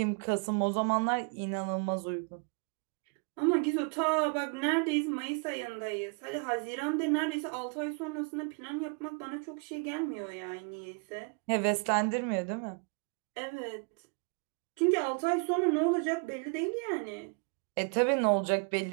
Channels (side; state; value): left; quieter; 35.7 dB